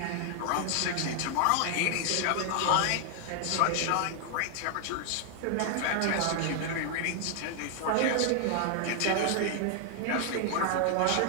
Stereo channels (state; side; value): different; both; correlation 0.00